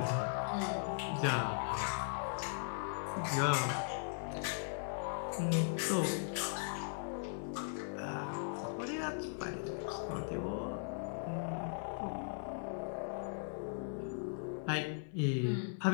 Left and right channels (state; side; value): silent; right; 52 dB below the other